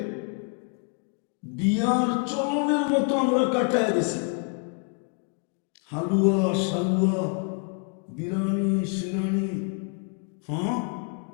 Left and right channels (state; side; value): quieter; right; 39.4 dB